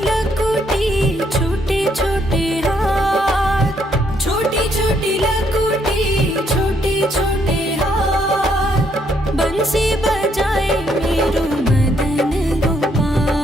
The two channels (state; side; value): normal; both; correlation 0.71